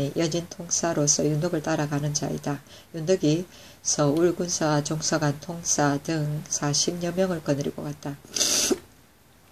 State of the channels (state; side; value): identical; both; correlation 1.00